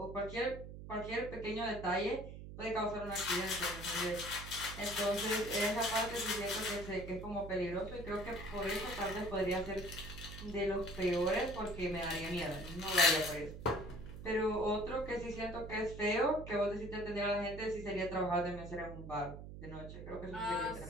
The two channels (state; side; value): noise; right; hum, 11 dB below the sound